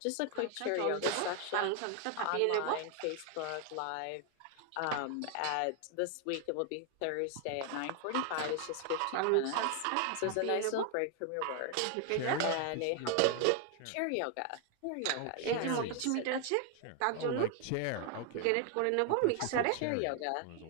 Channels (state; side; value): different; both; correlation 0.00